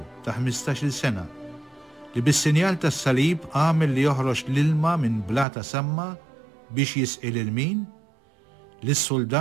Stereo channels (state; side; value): drops out; left; at 5.5 s